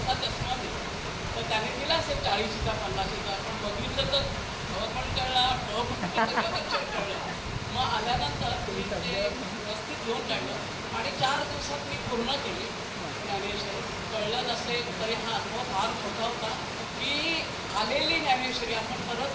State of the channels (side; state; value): both; identical; correlation 1.00